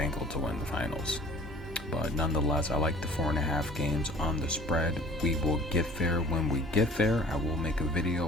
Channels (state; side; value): normal; both; correlation 0.50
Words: to win the finals. But nonetheless, I like the 4.5 games on the spread. We will get there when we get there. I will make a video